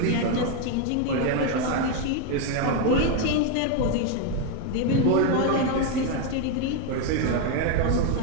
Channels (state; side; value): different; both; correlation 0.01